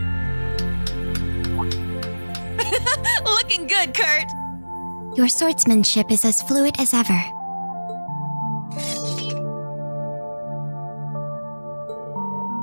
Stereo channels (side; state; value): both; inverted; correlation -1.00